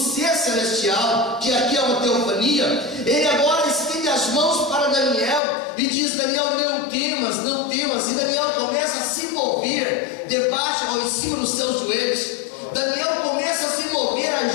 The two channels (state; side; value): drops out; right; at 5.4 s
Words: celestial, que aqui é uma teofania, ele agora estende as mãos para Daniel e diz: Daniel, não temas, não temas. E Daniel começa a se mover debaixo ou em cima dos seus joelhos. Daniel começa a se mover